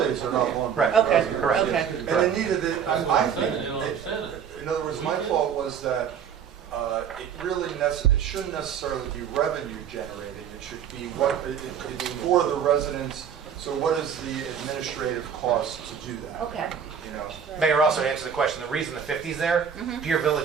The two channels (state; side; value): quieter; left; 7.8 dB